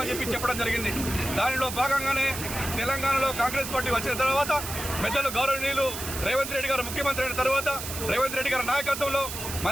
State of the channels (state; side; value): noise; right; hiss, 7 dB below the sound